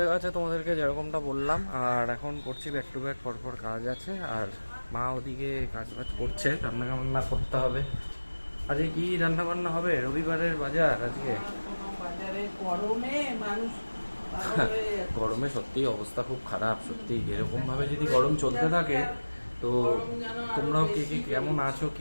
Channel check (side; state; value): both; inverted; correlation -1.00